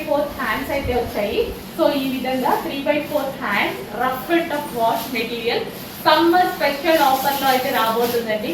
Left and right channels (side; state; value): both; identical; correlation 1.00